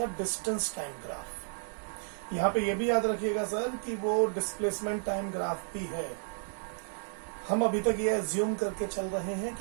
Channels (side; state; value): left; silent; digital silence